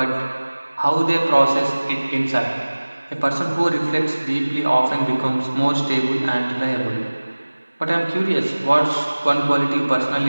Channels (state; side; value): inverted; both; correlation -1.00